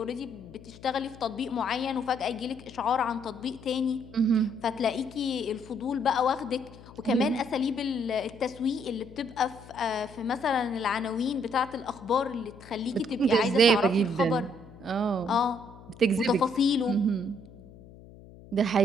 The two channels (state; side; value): noise; left; hum, 19 dB below the sound